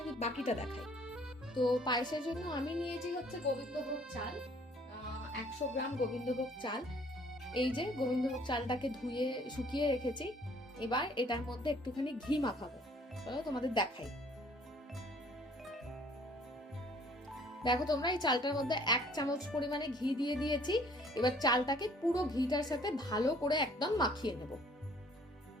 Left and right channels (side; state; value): both; normal; correlation 0.57